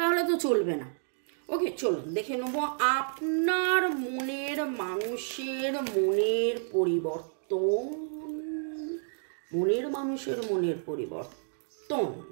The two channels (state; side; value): silent; left; digital silence